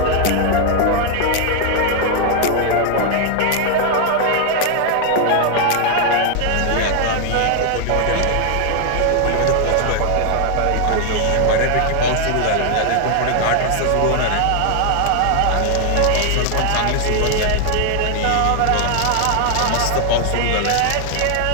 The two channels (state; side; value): different; both; correlation 0.00